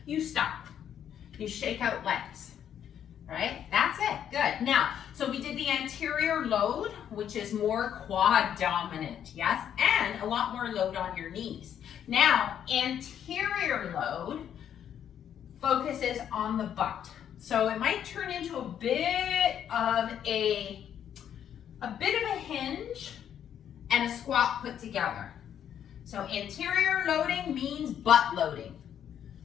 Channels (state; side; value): quieter; right; 9.4 dB